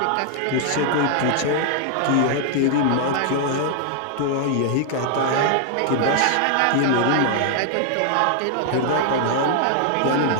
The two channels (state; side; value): different; both; correlation 0.00